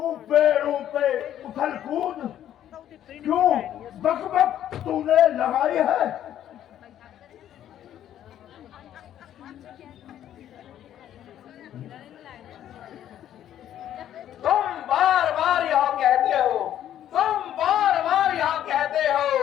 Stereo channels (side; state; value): right; quieter; 11.2 dB